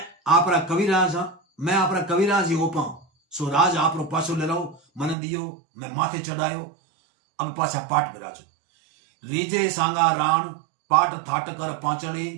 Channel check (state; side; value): drops out; left; at 5.2 s